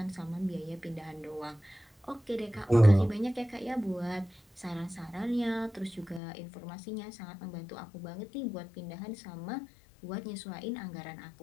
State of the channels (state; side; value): drops out; right; at 6.2 s